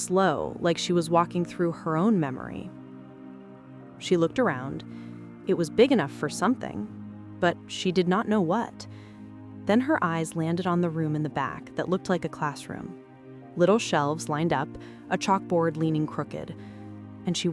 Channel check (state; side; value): identical; both; correlation 1.00